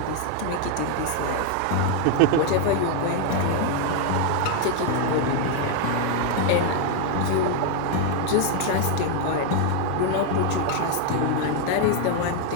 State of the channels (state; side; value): different; both; correlation 0.01